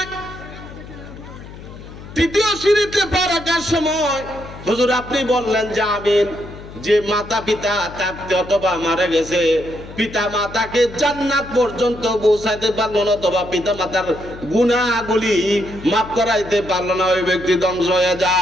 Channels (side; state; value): left; noise; hum, 15 dB below the sound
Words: রাখার সময় হুজুর আপনি বললেন যে আমিন। যে মাতা পিতা থাকতে অথবা মারা গেছে, পিতা মাতাকে জান্নাত পর্যন্ত পৌঁছাইতে পারলো না, অথবা পিতা মাতার গুনাহগুলি মাফ করাইতে পারলো না, ওই ব্যক্তি ধ্বংস হয়ে